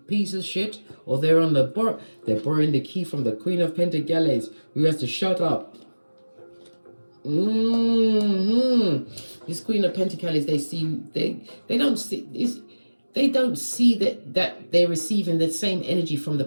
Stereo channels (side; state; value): both; inverted; correlation -1.00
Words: of shit, or they're on they're borrowing the key from the Queen of Pentacles, who has to shut up. This Queen of Pentacles, they don't see this. They don't see that they're receiving the same energy from the